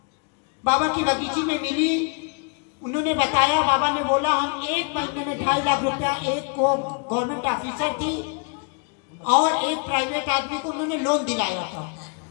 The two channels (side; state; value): right; quieter; 36.5 dB